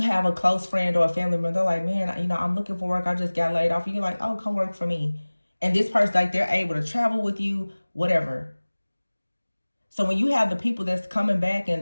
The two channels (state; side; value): inverted; both; correlation -1.00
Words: a close friend or a family member, they're like, man, you know, I'm looking for work. I just got laid off. And you're like, oh, come work for me. And this person, like, they're able to travel with you, whatever. So when you have the people that's coming back